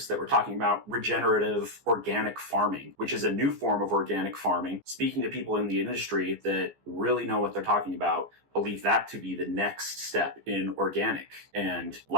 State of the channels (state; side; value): late; left; 14 ms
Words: that were talking about regenerative organic farming, which is a new form of organic farming. Speaking to people in the industry that really know what they're talking about, believe that to be the next step in organic. And